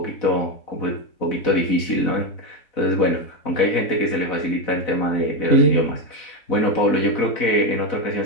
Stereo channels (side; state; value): right; late; 4.0 ms